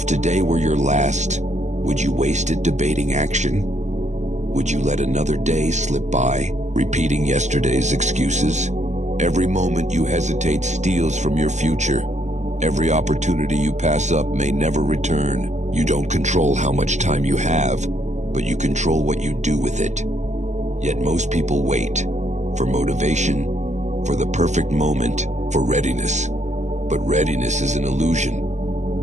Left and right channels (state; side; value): late; left; 0.34 ms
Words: today were your last, would you waste it debating action? Would you let another day slip by, repeating yesterday's excuses? Every moment you hesitate steals from your future. Every opportunity you pass up may never return. You don't control how much time you have, but you control what you do with it. Yet most people wait for motivation, for the perfect moment, for readiness. But readiness is an illusion.